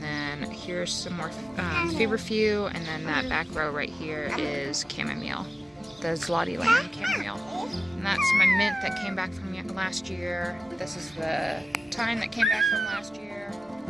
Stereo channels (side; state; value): both; normal; correlation 0.96